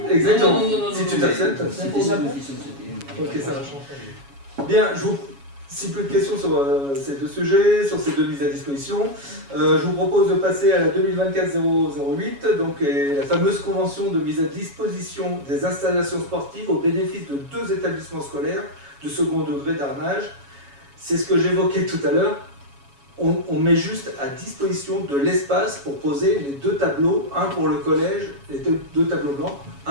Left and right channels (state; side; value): late; left; 7.2 ms